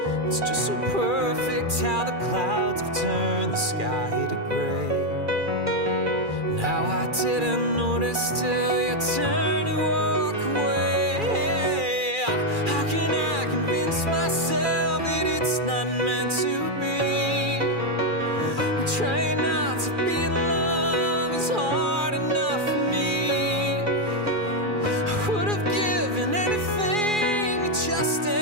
It's just so perfect how the clouds have turned the sky to gray. And how I didn't notice till you turned to walk away. How can I convince myself that it's not meant to be? I'm trying not to be in love, it's hard enough for me. I would have given anything to just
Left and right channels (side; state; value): left; late; 2.4 ms